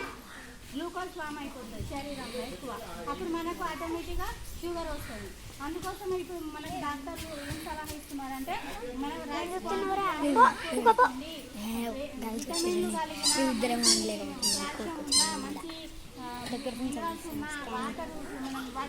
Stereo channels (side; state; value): both; identical; correlation 1.00